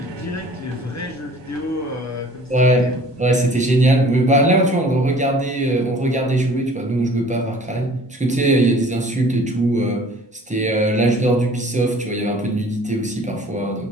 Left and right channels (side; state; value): both; normal; correlation 0.50